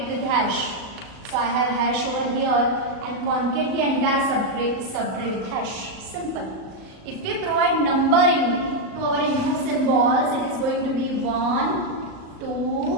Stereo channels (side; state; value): left; late; 37 ms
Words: with hash. So I have hash over here, and concate the entire subtree with hash. Simple. If we provide numbering to our input symbols, it is going to be 1,